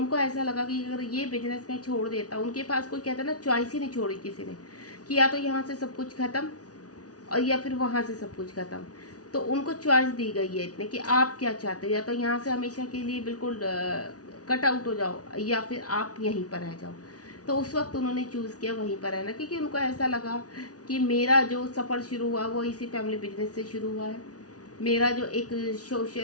ऐसा लगा कि अगर ये बिजनेस मैं छोड़ देता, उनके पास कोई कहता है ना चॉइस ही नहीं छोड़ी किसी ने, कि या तो यहाँ से सब कुछ ख़त्म और या फिर वहाँ से सब कुछ ख़त्म। तो उनको चॉइस दी गई है इतने कि आप क्या चाहते हो, या तो यहाँ से हमेशा के लिए बिल्कुल कट आउट हो जाओ, या फिर आप यहीं पर रह जाओ। तो उस वक्त उन्होंने चूज़ किया वहीं पर रहना, क्योंकि उनको ऐसा लगा कि मेरा जो सफ़र शुरू हुआ वो इसी फैमिली बिजनेस से शुरू हुआ है, मेरा जो एक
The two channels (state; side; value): late; right; 0.68 ms